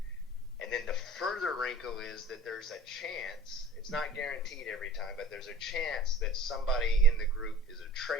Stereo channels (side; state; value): both; normal; correlation 0.45